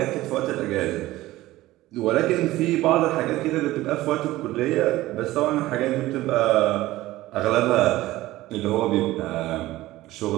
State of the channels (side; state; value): left; quieter; 16.9 dB